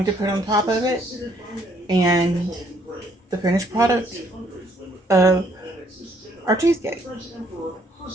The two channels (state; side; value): normal; both; correlation 0.67